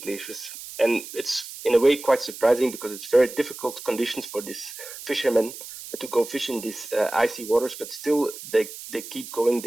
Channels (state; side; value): noise; right; hiss, 12 dB below the sound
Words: glaciers. And it's in a way quite surprising, because it's very difficult conditions for these fishermen to go fish in these icy waters, but still they keep going